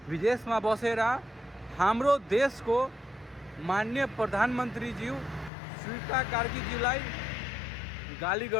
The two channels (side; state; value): right; drops out; at 5.5 s